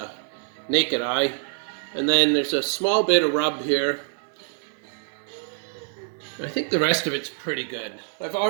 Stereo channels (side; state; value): left; silent; 62 dB below the other